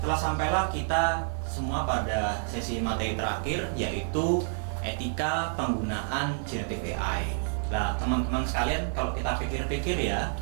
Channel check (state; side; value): silent; left; digital silence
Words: telah sampailah kita semua pada sesi materi terakhir, yaitu etika penggunaan Generative AI. Nah, teman-teman sekalian, kalau kita pikir-pikir ya,